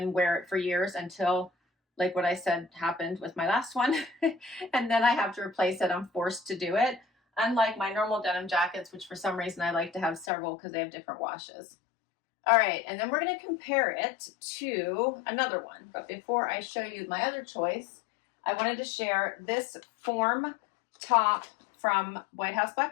wear it for years until, like what I said happened with my last one, and then I have to replace it. I'm forced to do it. Unlike my normal denim jackets, which for some reason I like to have several because they have different washes. All right, and then we're going to compare it to another one. But before I show you my other choice, I wanted to share this form top from White House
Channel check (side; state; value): right; drops out; at 10.3 s